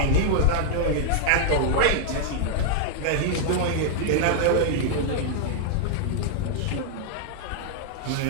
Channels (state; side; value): different; both; correlation -0.01